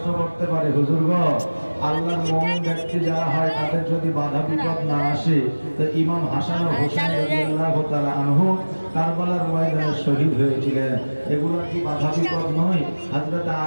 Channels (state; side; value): inverted; both; correlation -1.00